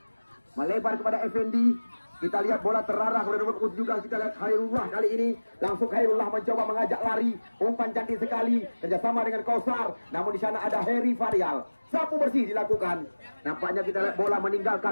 melebar kepada Effendi. Kita lihat bola terarah kepada nomor 17. Kita lihat Khairullah kali ini. Langsung Khairullah mencoba mengajak lari. Umpan cantik sekali. Kerjasama dengan Kausar. Namun di sana ada Heri Varial. Sapu bersih dilakukan. Nampaknya kita lihat bola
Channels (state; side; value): inverted; both; correlation -1.00